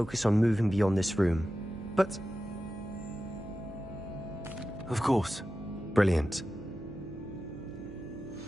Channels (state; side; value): noise; right; hum, 15 dB below the sound